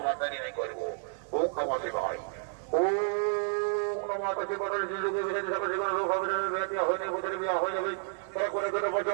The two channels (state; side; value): silent; left; 57 dB below the other